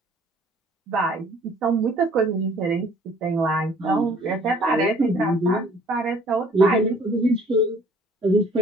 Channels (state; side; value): normal; both; correlation 0.55